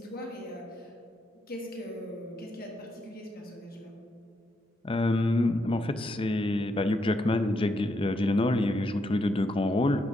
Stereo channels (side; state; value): both; normal; correlation 0.79